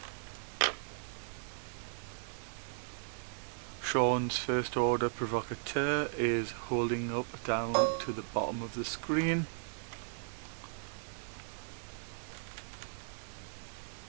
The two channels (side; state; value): left; silent; digital silence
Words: Sean's first order provocateur is holding up down to the bottom of the screen.